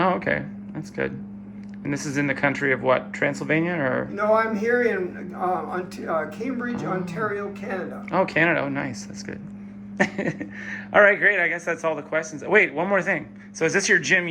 okay. That's good. And this is in the country of what, Transylvania or? No, I'm here in Cambridge, Ontario, Canada. Oh, Canada. Oh, nice. That's good. All right, great. I guess that's all the questions. Wait, one more thing. So is this your gym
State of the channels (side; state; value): both; identical; correlation 1.00